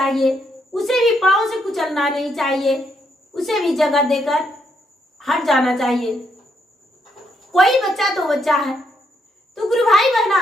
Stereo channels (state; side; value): normal; both; correlation 0.76